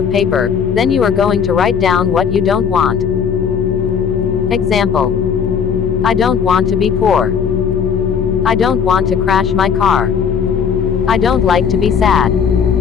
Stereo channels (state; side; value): quieter; right; 6.9 dB